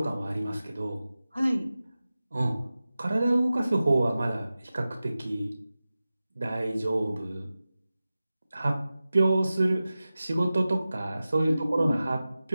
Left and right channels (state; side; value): inverted; both; correlation -0.95